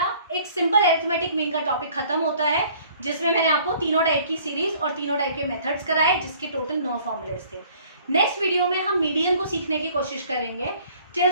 एक सिंपल अरिथमेटिक मीन का टॉपिक खत्म होता है, जिसमें मैंने आपको तीनों टाइप की सीरीज और तीनों टाइप के मेथड्स कराए, जिसके टोटल 9 फॉर्मूलेज थे। नेक्स्ट वीडियो में हम मीडियन को सीखने की कोशिश करेंगे। टिल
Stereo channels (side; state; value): both; inverted; correlation -0.55